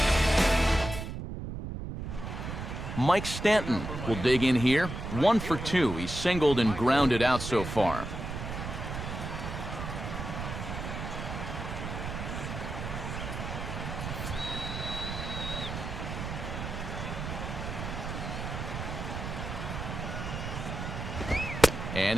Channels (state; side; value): noise; right; rumble, 6 dB below the sound